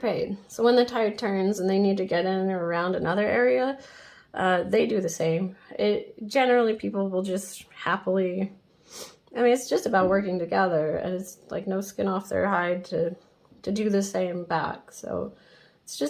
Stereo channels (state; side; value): identical; both; correlation 1.00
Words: So when the tide turns and they need to get in or around another area, they do the same. Generally, people will just happily, I mean, it's just about working together, and it's like no skin off their hide to do the same back. So it's